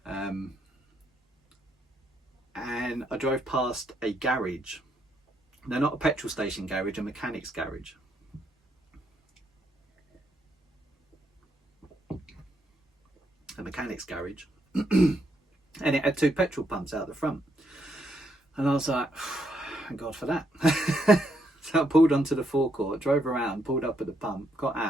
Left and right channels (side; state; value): both; normal; correlation 0.76